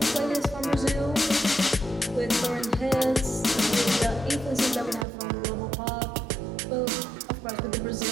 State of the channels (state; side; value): drops out; left; at 5.1 s